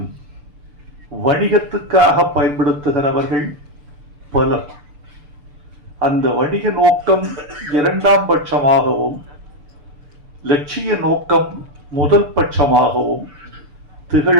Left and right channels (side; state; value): left; late; 6.8 ms